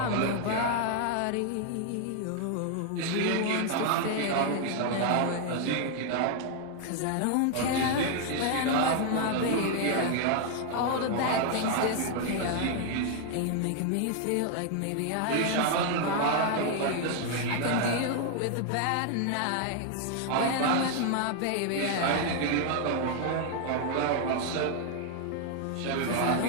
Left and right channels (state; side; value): different; both; correlation 0.00